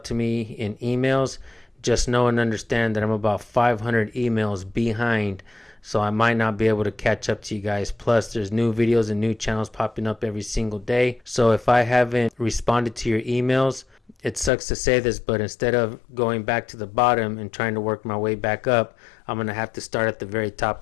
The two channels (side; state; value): right; drops out; at 14.5 s